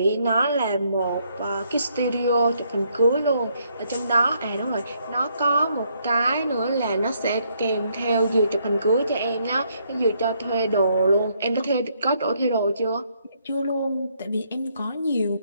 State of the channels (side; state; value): both; inverted; correlation -0.72